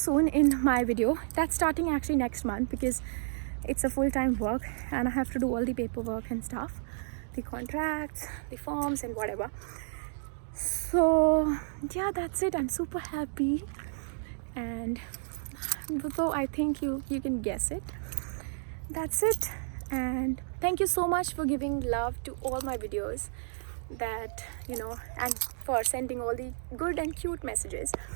in my video. That's starting actually next month, because it's a full-time work and I have to do all the paperwork and stuff, the contracts, the forms and whatever. So yeah, that's it. I'm super happy, and so I think you can guess it. That's it. And thank you so much for giving love to all my videos, and for sending all the good and cute messages.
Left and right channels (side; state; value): left; silent; digital silence